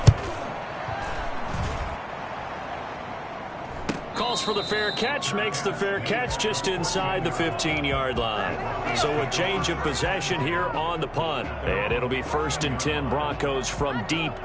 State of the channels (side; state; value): both; identical; correlation 1.00